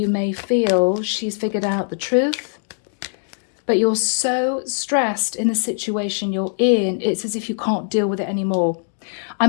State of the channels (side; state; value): right; silent; digital silence